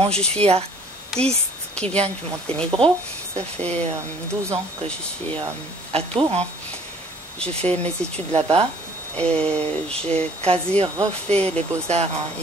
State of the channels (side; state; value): both; normal; correlation 0.55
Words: je suis artiste qui vient du Monténégro. Ça fait 12 ans que je suis à Tours. J'ai fait mes études là-bas et j'ai quasi refait les beaux-arts